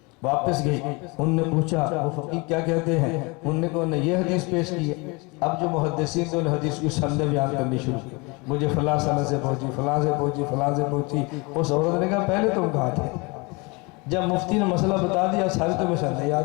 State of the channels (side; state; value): right; quieter; 27.8 dB